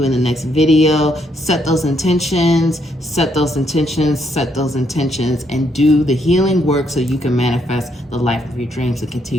in the next video. Set those intentions, set those intentions, set those intentions, and do the healing work so you can manifest the life of your dreams and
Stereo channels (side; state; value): both; normal; correlation 0.73